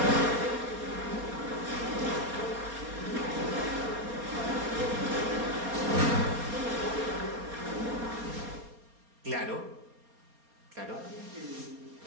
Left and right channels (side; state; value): left; late; 4.2 ms